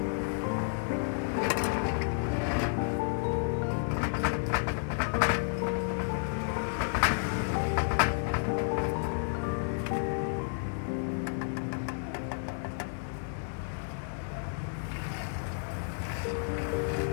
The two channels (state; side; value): silent; right; digital silence